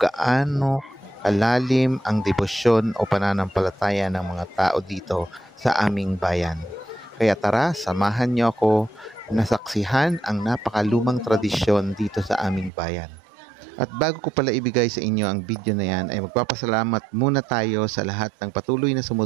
kalalim ang debosyon o pananampalataya ng mga tao dito sa aming bayan. Kaya tara, samahan niyo ako na saksihan ang napakalumang tradisyon dito sa aming bayan. At bago ko pala ibigay sa inyo ang video na yan, ay magpapasalamat muna tayo sa lahat ng patuloy na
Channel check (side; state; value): left; drops out; at 12.7 s